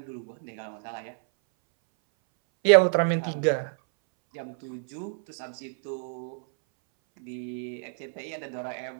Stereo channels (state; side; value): silent; left; 59 dB below the other